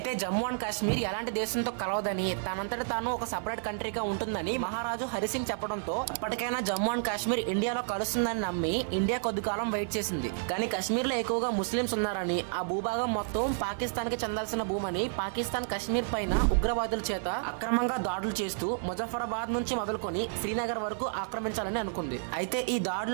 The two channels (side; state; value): left; silent; 57 dB below the other